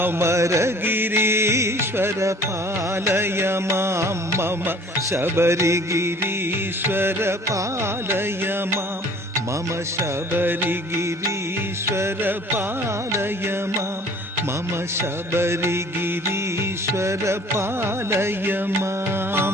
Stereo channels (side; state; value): both; normal; correlation 0.51